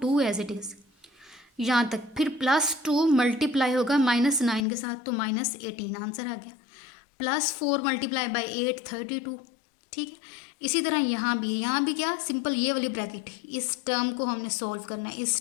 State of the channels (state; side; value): drops out; right; at 4.7 s